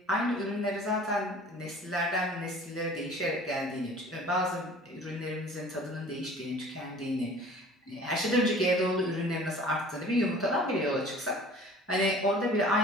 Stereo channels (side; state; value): both; normal; correlation 0.47